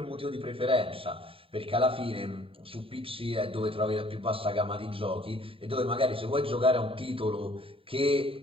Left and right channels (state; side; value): late; left; 0.27 ms